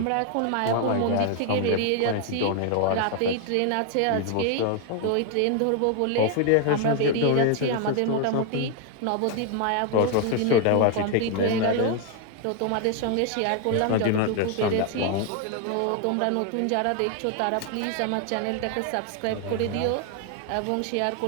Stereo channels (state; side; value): different; both; correlation 0.01